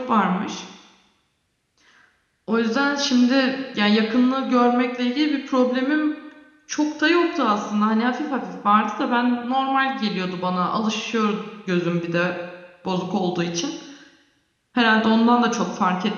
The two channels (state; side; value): identical; both; correlation 1.00